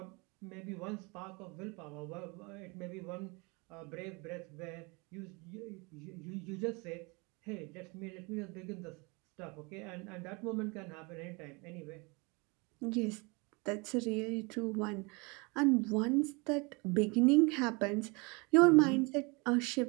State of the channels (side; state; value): left; quieter; 28.6 dB